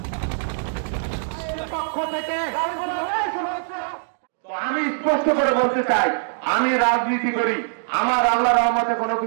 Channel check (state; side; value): silent; left; digital silence